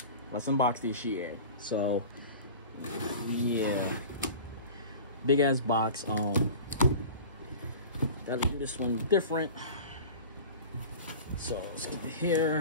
Let's unbox this shit. So yeah, big ass box. Gotta do this one different. So let's get it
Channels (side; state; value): both; inverted; correlation -0.37